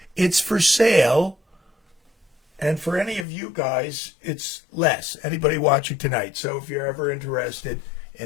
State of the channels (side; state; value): right; drops out; at 3.2 s